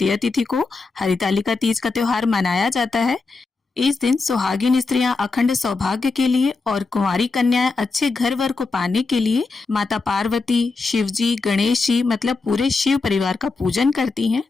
तिथि को हरितालिका तीज का त्योहार मनाया जाता है। इस दिन सुहागिन स्त्रियां अखंड सौभाग्य के लिए और कुंवारी कन्याएं अच्छे घर वर को पाने के लिए माता पार्वती, शिव जी, गणेश जी मतलब पूरे शिव परिवार का पूजन करती हैं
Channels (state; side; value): quieter; right; 4.0 dB